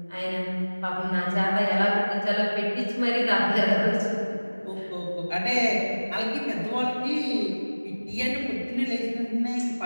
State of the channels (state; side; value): inverted; both; correlation -1.00